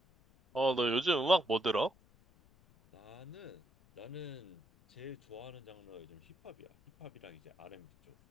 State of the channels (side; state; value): left; noise; rumble, 28 dB below the sound